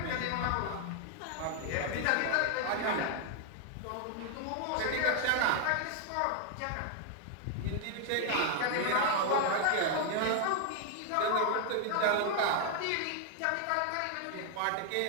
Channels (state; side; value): different; both; correlation 0.00